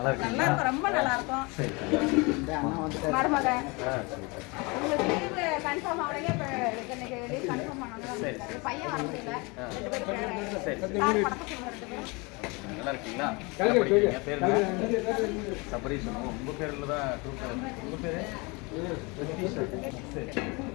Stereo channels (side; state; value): right; quieter; 27.6 dB